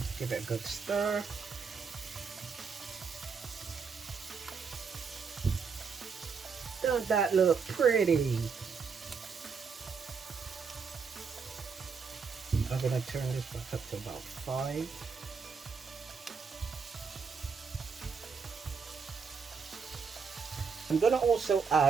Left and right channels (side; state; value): left; quieter; 5.6 dB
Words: give it a good stir. Don't that look pretty? I'm going to turn this back up to about 5. I'm going to also